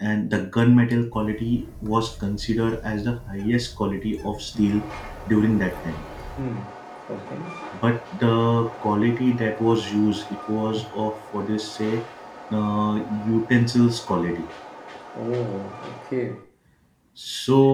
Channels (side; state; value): both; identical; correlation 1.00